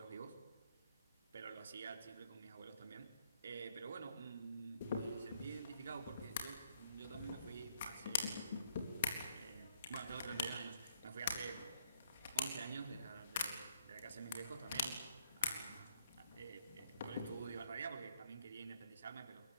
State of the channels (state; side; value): inverted; both; correlation -0.68